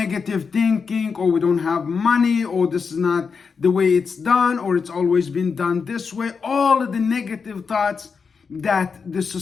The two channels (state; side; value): quieter; right; 5.5 dB